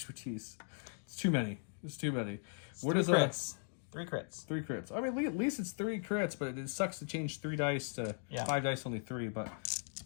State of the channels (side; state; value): right; silent; 52 dB below the other